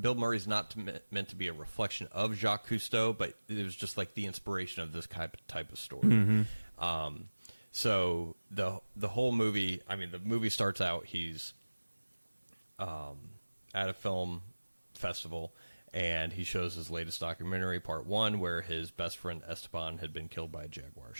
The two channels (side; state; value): both; inverted; correlation -1.00